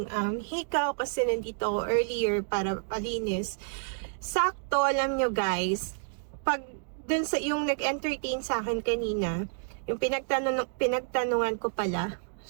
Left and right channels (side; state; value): left; silent; digital silence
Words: hikaw kasi nandito ako earlier para palinis. Sakto, alam nyo guys, pag dun sa yung nag-entertain sa akin kanina, yung pinagtanungan ko pala,